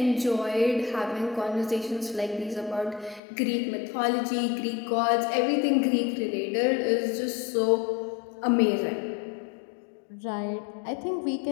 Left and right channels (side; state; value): right; drops out; at 3.2 s